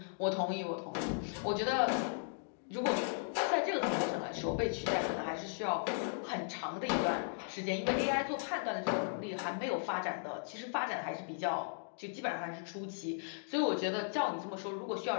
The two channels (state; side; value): silent; right; digital silence